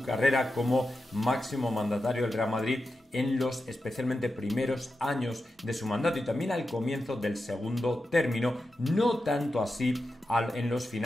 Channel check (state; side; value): normal; both; correlation 0.90